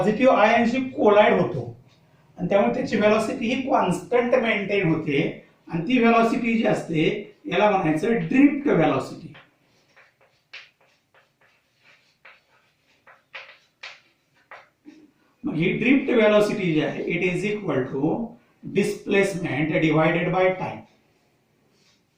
आयनशी कोलाइड होतो आणि त्यामुळे त्याची व्हेलॉसिटी ही कॉन्स्टंट मेंटेन होते आणि ती व्हेलॉसिटी जी असते याला म्हणायचं ड्रिफ्ट व्हेलॉसिटी. मग ही ड्रिफ्ट व्हेलॉसिटी जी आहे it is equal to displacement divided by time.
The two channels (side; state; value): both; identical; correlation 1.00